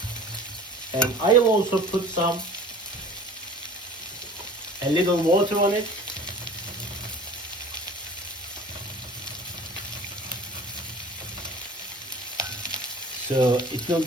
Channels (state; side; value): normal; both; correlation 0.43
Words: And I will also put a little water on it. So it will